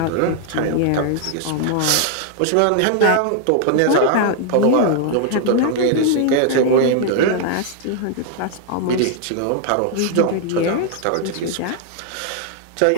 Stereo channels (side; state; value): both; different; correlation -0.01